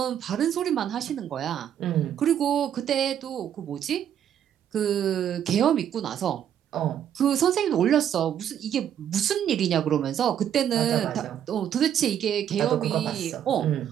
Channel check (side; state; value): left; quieter; 9.7 dB